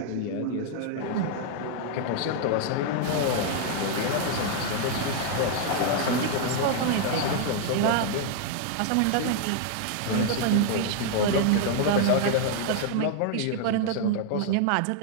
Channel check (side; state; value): both; different; correlation 0.00